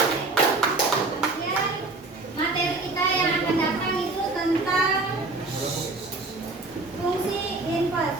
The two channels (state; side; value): quieter; left; 3.3 dB